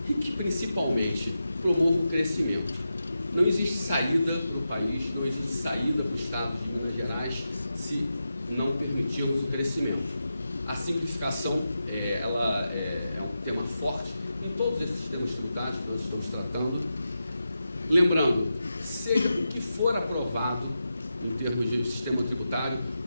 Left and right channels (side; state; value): both; inverted; correlation -0.90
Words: e que principalmente promova o crescimento. Não existe saída do país, não existe saída do Estado de Minas Gerais se não permitirmos o crescimento. A simplificação ela é um tema forte em todos esses sistemas tributários que nós estamos tratando. Lembrando, seja o que for aprovado em termos de sistema tributário,